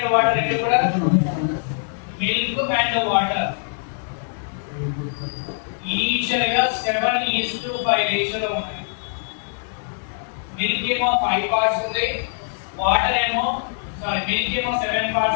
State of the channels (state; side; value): silent; right; digital silence